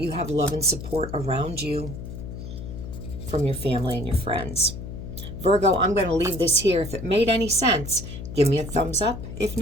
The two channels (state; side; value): noise; left; hum, 9 dB below the sound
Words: have love and support around you from your family and your friends. Virgo, I'm going to leave this here. If it made any sense, give me a thumbs up. If